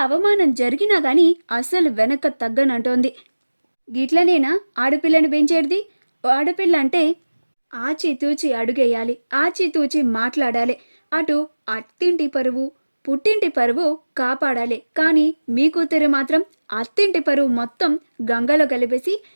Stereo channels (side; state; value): both; inverted; correlation -1.00